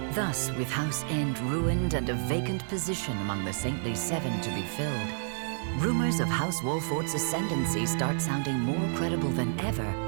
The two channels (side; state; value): left; silent; digital silence